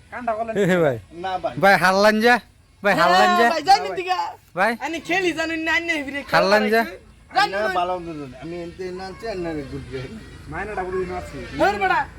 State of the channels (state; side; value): identical; both; correlation 1.00